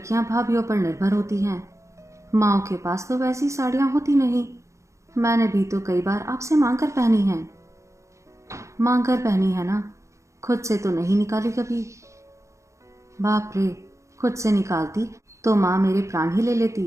भाभीयों पर निर्भर होती हैं। माँओं के पास तो वैसी साड़ियां होती नहीं। मैंने भी तो कई बार आपसे मांग कर पहनी हैं। मांग कर पहनी है ना, खुद से तो नहीं निकाली कभी। बाप रे, खुद से निकालती तो माँ मेरे प्राण ही ले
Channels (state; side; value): late; left; 0.15 ms